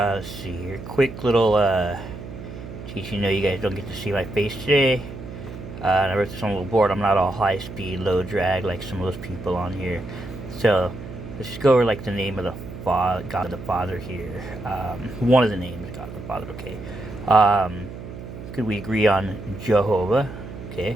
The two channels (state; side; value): noise; right; hum, 11 dB below the sound